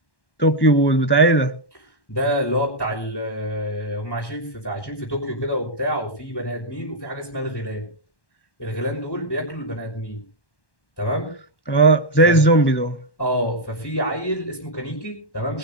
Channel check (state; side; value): late; right; 1.1 ms